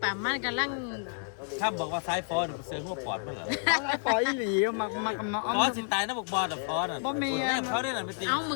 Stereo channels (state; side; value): silent; right; digital silence